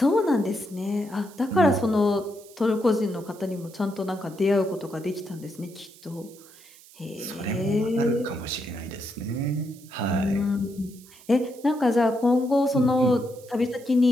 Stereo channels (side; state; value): right; noise; hiss, 23 dB below the sound